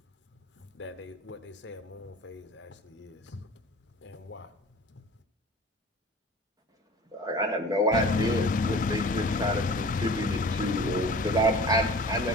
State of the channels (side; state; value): both; normal; correlation 0.42